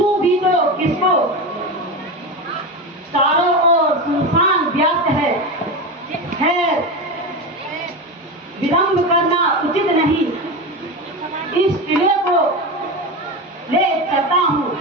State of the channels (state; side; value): normal; both; correlation 0.20